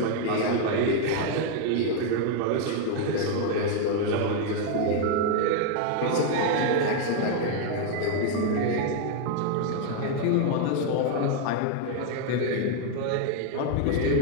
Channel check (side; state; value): both; different; correlation 0.00